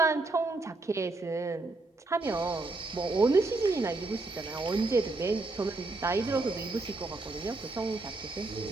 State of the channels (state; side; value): quieter; left; 3.3 dB